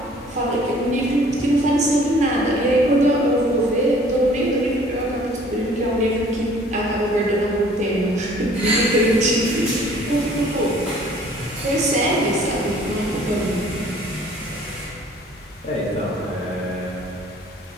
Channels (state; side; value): normal; both; correlation 0.54